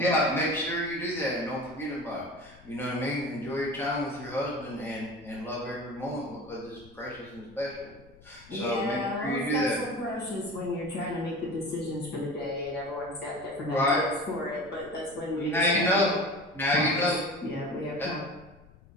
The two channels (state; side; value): noise; left; rumble, 24 dB below the sound